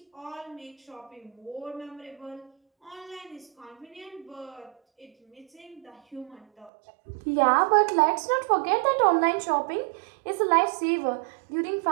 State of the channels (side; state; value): left; drops out; at 6.7 s